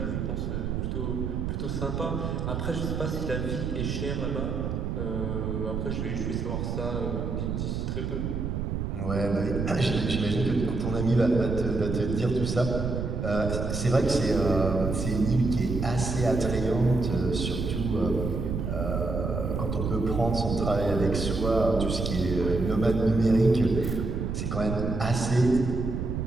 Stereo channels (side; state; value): right; noise; rumble, 2 dB below the sound